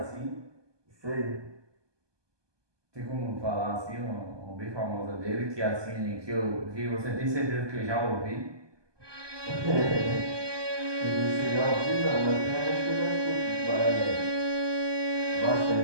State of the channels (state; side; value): late; left; 1.2 ms